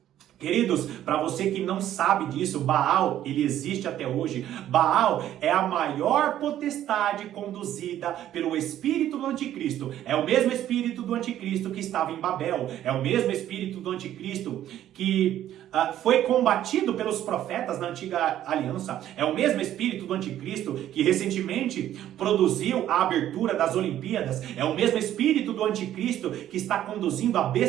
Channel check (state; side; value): quieter; left; 12.0 dB